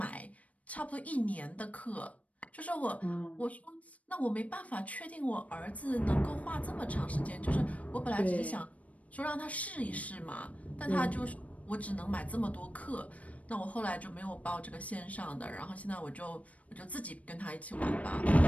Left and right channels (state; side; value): late; right; 0.067 ms